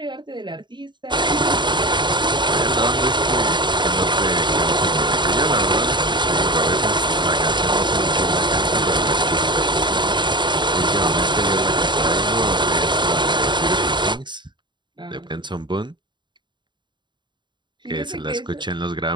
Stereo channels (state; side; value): late; left; 0.22 ms